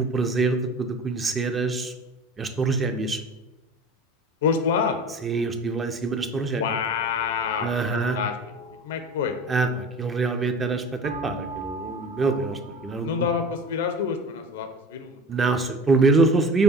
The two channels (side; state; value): both; normal; correlation 0.38